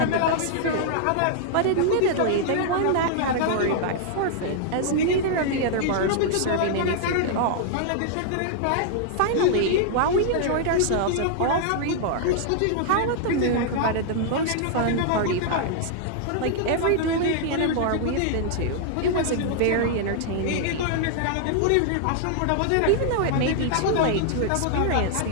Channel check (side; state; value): both; different; correlation -0.01